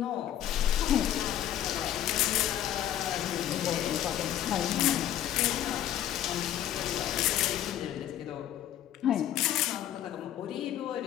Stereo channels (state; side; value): quieter; right; 11.6 dB